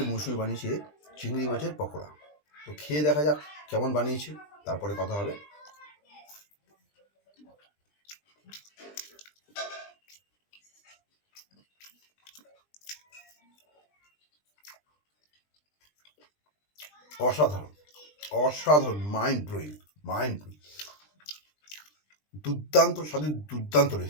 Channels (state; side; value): late; right; 20 ms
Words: মৌসুমী বানিয়েছে চিংড়ি মাছের পকোড়া। তো খেয়ে দেখা যাক কেমন বানিয়েছে, তারপরে কথা হবে। অসাধারণ, অসাধারণ, মাইন্ড ব্লোয়িং, দুর্দান্ত স্বাদের দুর্দান্ত